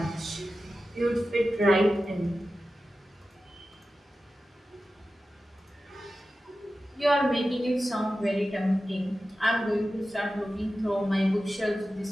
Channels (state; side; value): normal; both; correlation 0.94